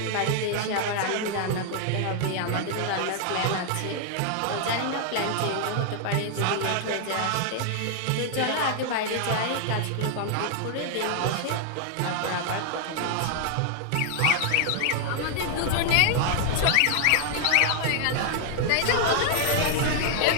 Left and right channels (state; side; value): different; both; correlation 0.00